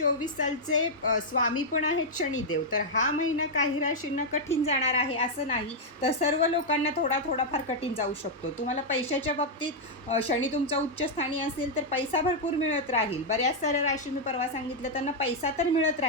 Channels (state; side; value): normal; both; correlation -0.04